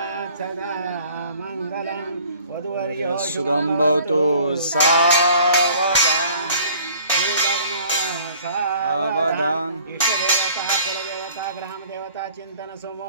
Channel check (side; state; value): both; inverted; correlation -0.52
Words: सदा मंगलं वधुवर्यो शुभं भवतु सावधान सावधान इष्टदेवता कुलदेवता ग्रामदेवता चिंतन